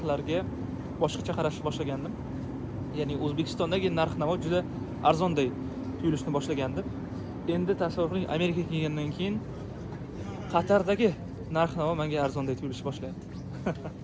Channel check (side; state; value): both; identical; correlation 1.00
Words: boshqacha qarashni boshlagandim. Ya'ni O'zbekistondagi narx-navo juda arzonday tuyulishni boshlagandim. Endi tasavvur qiling, Amerikaga kelgandan keyin Qatardagi narx-navo menga arzonday tuyulishni boshlayapti.